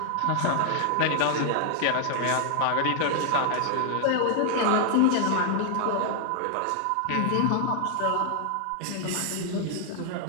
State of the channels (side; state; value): both; different; correlation 0.00